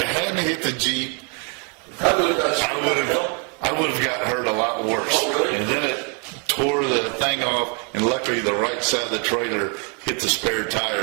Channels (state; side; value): quieter; left; 37.2 dB